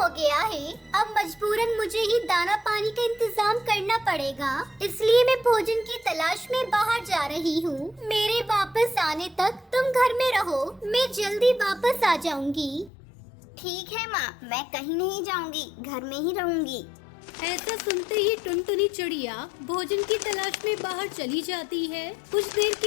गया है। अब मजबूरन मुझे ही दाना पानी का इंतजाम करना पड़ेगा, इसलिए मैं भोजन की तलाश में बाहर जा रही हूँ। मेरे वापस आने तक तुम घर में रहो, मैं जल्दी वापस आ जाऊंगी। ठीक है माँ, मैं कहीं नहीं जाऊंगी, घर में ही रहूंगी। ऐसा सुनते ही टुनटुनी चिड़िया भोजन की तलाश में बाहर चली जाती है। कुछ देर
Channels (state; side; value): drops out; right; at 12.9 s